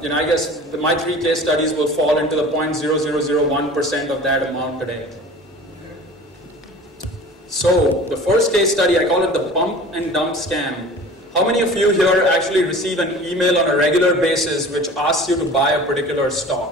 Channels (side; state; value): both; normal; correlation 0.42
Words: guess my 3 case studies will fall into the 0.0001% of that amount today. So the first case study, I call it the pump and dump scam. How many of you here actually receive an email on a regular basis which asks you to buy a particular